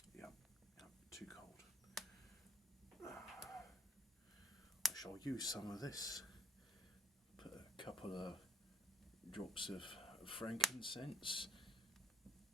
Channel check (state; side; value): normal; both; correlation 0.66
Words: Yeah, too cold. I shall use some of this. Put a couple of drops of frankincense,